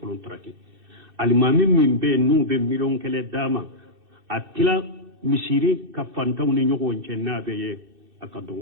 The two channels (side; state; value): left; late; 2.6 ms